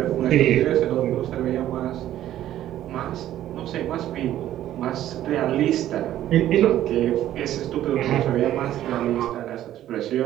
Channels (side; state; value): left; quieter; 12.6 dB